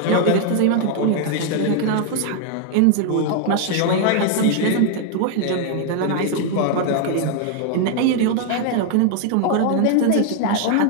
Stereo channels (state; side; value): different; both; correlation 0.00